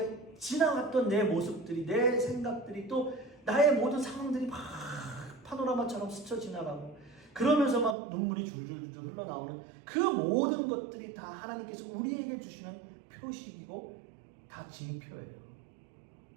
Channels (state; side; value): drops out; left; at 8.0 s